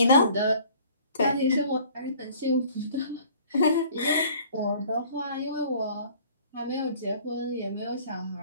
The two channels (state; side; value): inverted; both; correlation -0.53